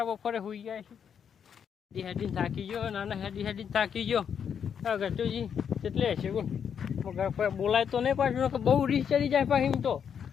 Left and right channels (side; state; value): right; quieter; 7.7 dB